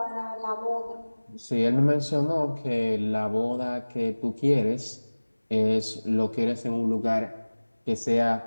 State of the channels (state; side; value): inverted; both; correlation -1.00